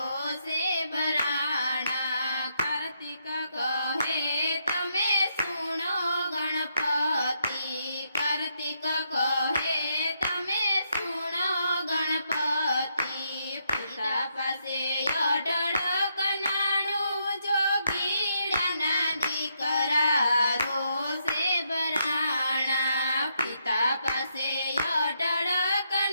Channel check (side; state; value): both; inverted; correlation -0.78